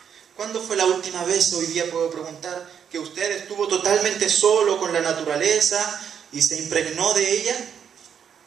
¿Cuándo fue la última vez, hoy día puedo preguntar, que usted estuvo totalmente solo con la naturaleza y se impregnó de ella?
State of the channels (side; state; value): left; quieter; 7.9 dB